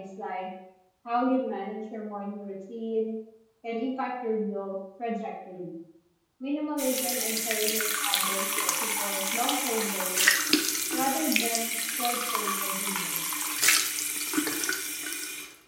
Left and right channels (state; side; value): identical; both; correlation 1.00